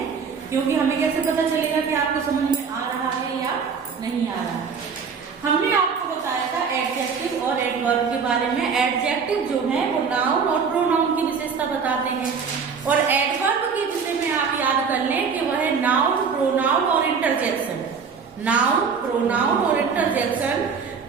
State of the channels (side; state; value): left; quieter; 5.8 dB